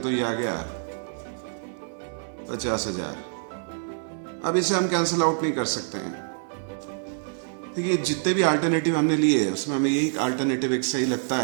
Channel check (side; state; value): left; silent; 61 dB below the other